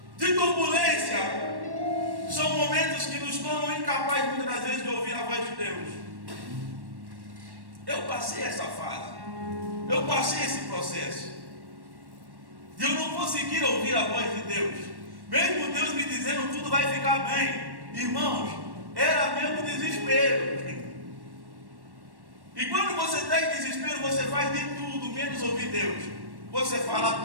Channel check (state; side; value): late; left; 1.1 ms